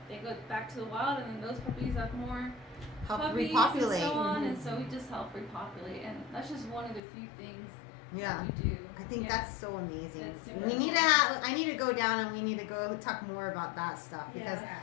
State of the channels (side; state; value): right; drops out; at 7.0 s